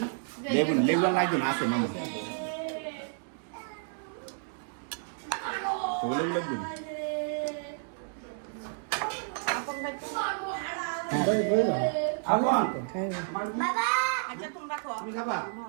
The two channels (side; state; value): left; silent; digital silence